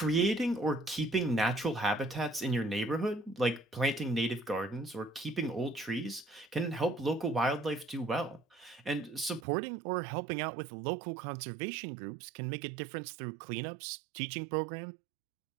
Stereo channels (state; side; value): drops out; left; at 9.5 s